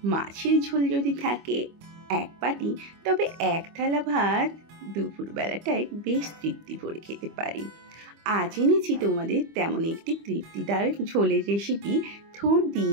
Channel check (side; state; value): left; late; 25 ms